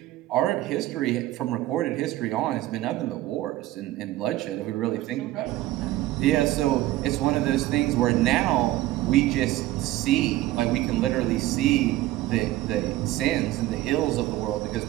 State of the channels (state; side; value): quieter; left; 15.9 dB